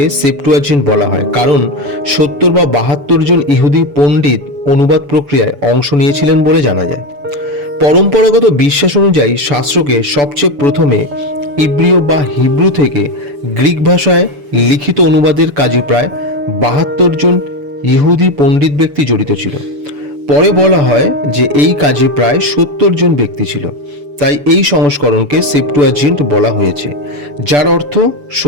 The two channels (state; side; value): late; left; 6.9 ms